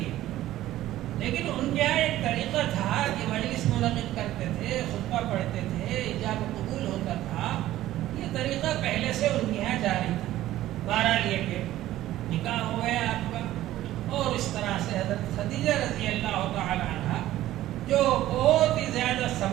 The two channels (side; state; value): left; quieter; 14.5 dB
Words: ہے، لیکن ان کے یہاں ایک طریقہ تھا کہ مجلس منعقد کرتے تھے، خطبہ پڑھتے تھے، ایجاب و قبول ہوتا تھا، یہ طریقہ پہلے سے ان کے یہاں جاری تھا۔ بہرحال یہ کہ نکاح ہو گیا آپ کا، اور اس طرح سے حضرت خدیجہ رضی اللہ تعالی عنہ جو بہت ہی زیادہ